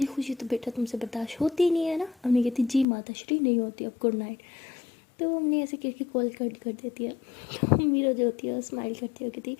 खुशी तो बेटा तुमसे बर्दाश्त होती ही नहीं है ना। हमने कहती जी माता श्री, नहीं होती, अब गुड नाइट। तो हमने ऐसे करके कॉल कट कर देती है। तो मीरा जो होती है स्माइल करती है, कहती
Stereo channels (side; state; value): right; drops out; at 2.9 s